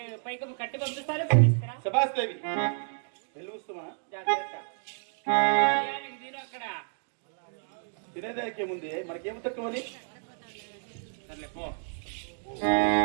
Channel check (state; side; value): silent; left; digital silence